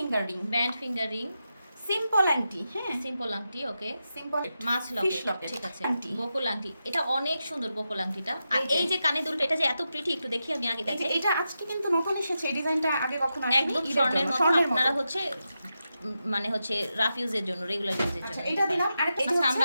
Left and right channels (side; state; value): both; inverted; correlation -0.89